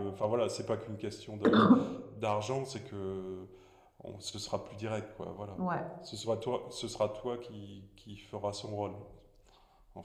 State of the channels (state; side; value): identical; both; correlation 1.00